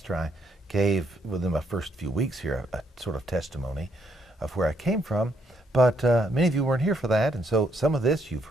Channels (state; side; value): normal; both; correlation 0.73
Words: I gave, within my first few weeks here, a sort of testimony of where I came from. But many of you weren't here for that, and so some of this you've